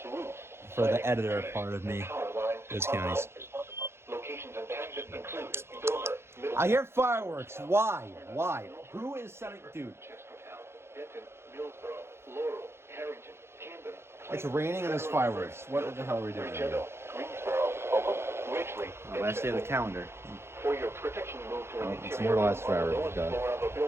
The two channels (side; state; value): left; late; 0.12 ms